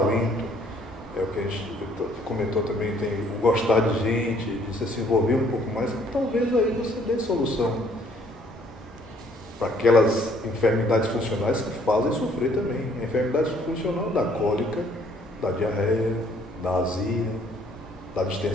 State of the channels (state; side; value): normal; both; correlation 0.62